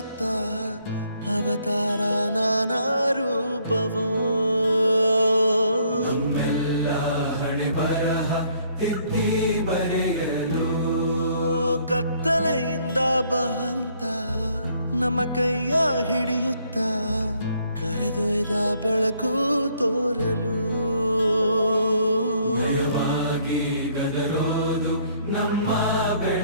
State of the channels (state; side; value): inverted; both; correlation -0.66